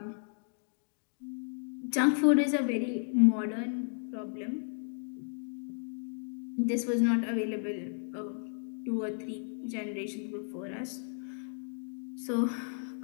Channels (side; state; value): right; silent; 55 dB below the other